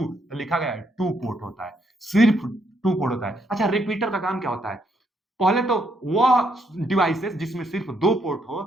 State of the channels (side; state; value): both; normal; correlation 0.74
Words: लिखा गया है टू पोर्ट होता है, सिर्फ टू पोर्ट होता है। अच्छा, रिपीटर का काम क्या होता है? पहले तो वह डिवाइसेस जिसमें सिर्फ दो पोर्ट हो,